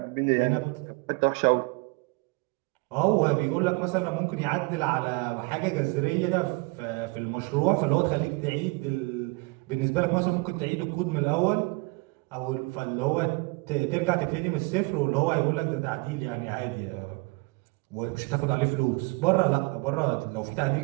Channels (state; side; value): quieter; left; 27.6 dB